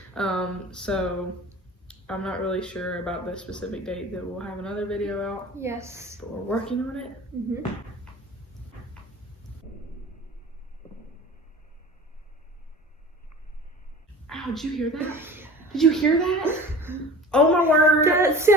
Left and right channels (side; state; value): both; normal; correlation 0.39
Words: So I'm not really sure about the specific date that we'll have another video out. Yes. But we're working on it. Ow, did you hear that? Did you hear that? Oh my word. That